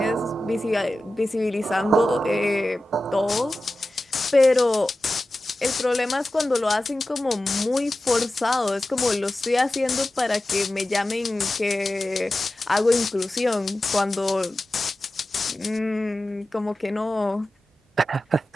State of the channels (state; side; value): normal; both; correlation 0.94